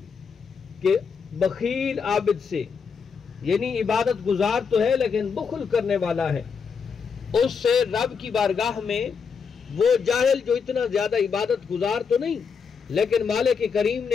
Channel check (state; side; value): quieter; right; 5.9 dB